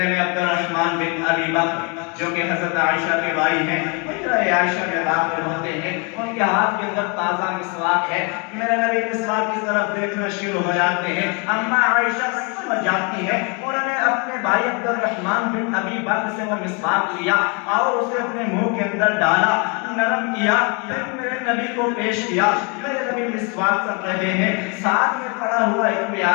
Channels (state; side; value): quieter; right; 33.3 dB